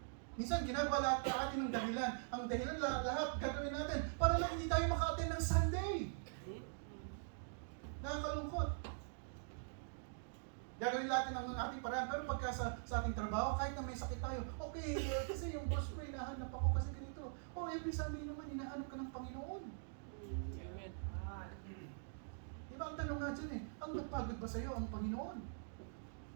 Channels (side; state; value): left; silent; digital silence